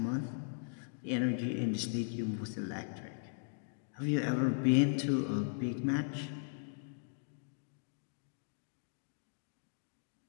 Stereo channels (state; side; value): silent; right; digital silence